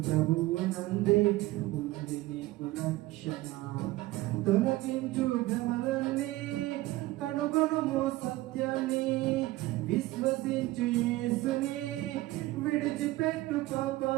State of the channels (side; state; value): left; quieter; 18.1 dB